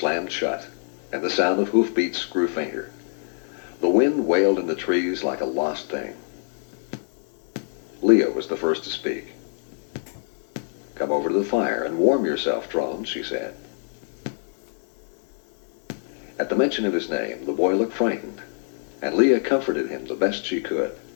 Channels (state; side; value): silent; right; 62 dB below the other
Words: shut, and the sound of hoofbeats grew fainter. The wind wailed in the trees like a lost thing. Leah was the first to speak. "Come over to the fire and warm yourself, Trone," she said. At the mention of his name, the boy looked frightened, and Leah comforted him the best she could.